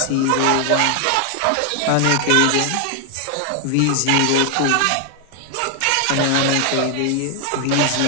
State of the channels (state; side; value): different; both; correlation 0.00